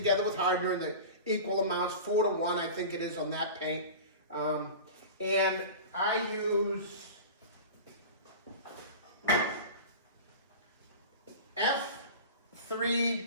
with hardener in the equal amounts, 4 to 1, I think it is on that paint. And I use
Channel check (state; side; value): inverted; both; correlation -0.33